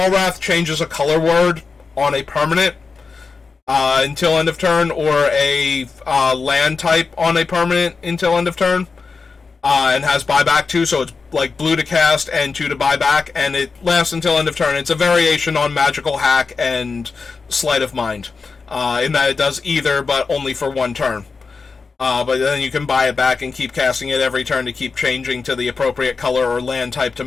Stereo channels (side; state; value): right; quieter; 4.6 dB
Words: changes a color word on a permanent until end of turn, or a land type on a permanent until end of turn, and has buyback too, so it's like blue to cast and 2 to buyback, and it lasts until end of turn. It's a variation on Magical Hack and Sleight of Mind, in that it does either, but only for 1 turn. But then you can buy it back and keep casting it every turn to keep changing to the appropriate color or land type to